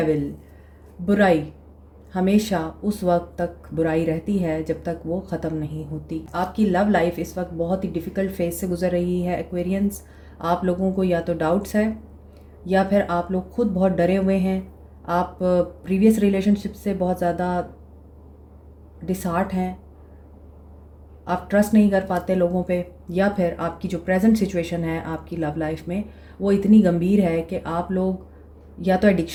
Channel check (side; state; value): both; identical; correlation 1.00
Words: बुराई हमेशा उस वक्त तक बुराई रहती है जब तक वो ख़त्म नहीं होती। आपकी लव लाइफ इस वक्त बहुत ही डिफ़िकल्ट फेज से गुजर रही है एक्वेरियंस। आप लोगों को या तो डाउट्स है या फिर आप लोग खुद बहुत डरे हुए हैं। आप प्रीवियस रिलेशनशिप से बहुत ज़्यादा डिसहार्ट हैं, आप ट्रस्ट नहीं कर पाते लोगों पे, या फिर आपकी जो प्रेजेंट सिचुएशन है आपकी लव लाइफ में वो इतनी गंभीर है कि आप लोग या तो